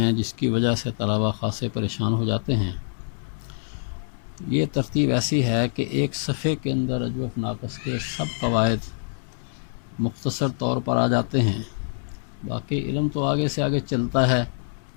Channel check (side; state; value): right; silent; digital silence